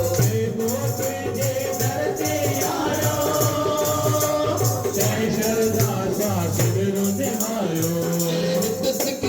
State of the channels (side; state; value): both; identical; correlation 1.00